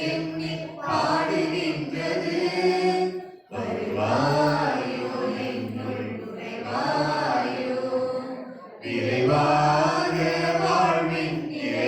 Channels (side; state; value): both; identical; correlation 1.00